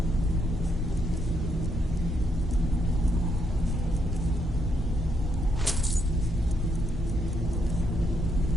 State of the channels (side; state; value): both; normal; correlation 0.76